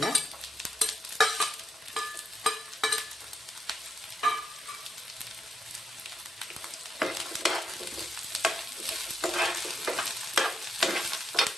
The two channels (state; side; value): normal; both; correlation 0.83